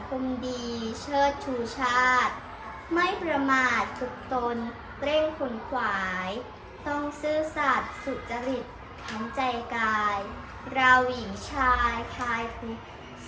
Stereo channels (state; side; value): identical; both; correlation 1.00